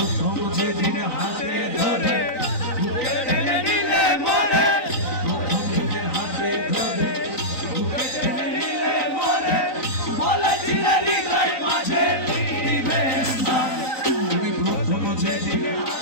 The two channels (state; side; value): late; right; 3.9 ms